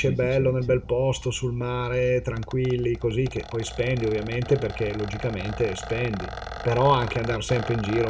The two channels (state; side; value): identical; both; correlation 1.00